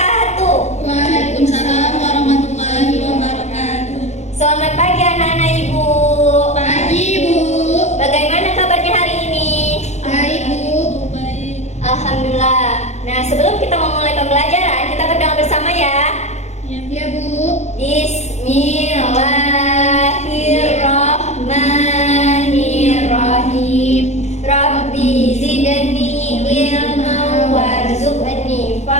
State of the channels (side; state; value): right; late; 0.33 ms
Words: Waalaikumsalam warahmatullahi wabarakatuh. Selamat pagi anak-anak ibu. Pagi Bu. Bagaimana kabarnya hari ini? Baik Bu. Baik. Alhamdulillah. Nah, sebelum kita memulai pembelajaran, kita berdoa bersama ya. Ya Bu. Bismillahirrahmanirrahim. Rabbi zidni ilman warzuqni